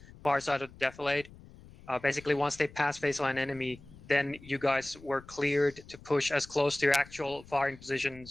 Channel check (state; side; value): noise; left; rumble, 21 dB below the sound